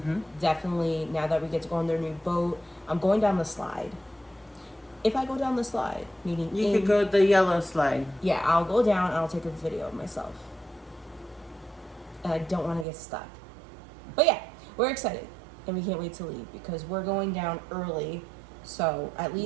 Definitely, now that we get to go on their new boat, I'm going down the slide. If I go down the slide, meaning you could go the yellow slide. Yeah, I'll go down and I'll take a video of myself. And I don't want to get stuck. But yeah, we're excited. And we can't wait to leave because we're going down early. So at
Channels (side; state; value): left; drops out; at 12.9 s